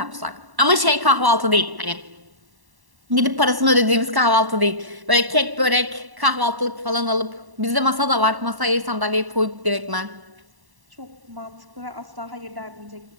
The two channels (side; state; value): left; late; 1.1 ms